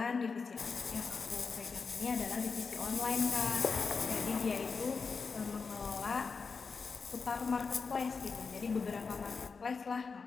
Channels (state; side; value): quieter; right; 5.0 dB